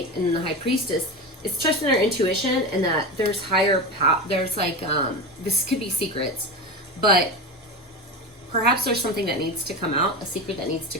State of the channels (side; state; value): both; normal; correlation 0.23